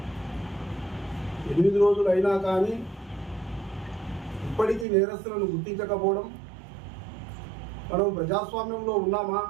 8 రోజులు అయినా కానీ ఇప్పటికీ నేరస్తులను గుర్తించకపోవడం, మనం ప్రజాస్వామ్యంలో ఉన్నామా,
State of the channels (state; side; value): drops out; left; at 4.9 s